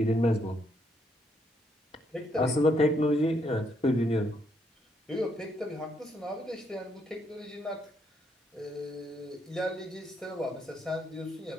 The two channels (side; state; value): both; normal; correlation 0.74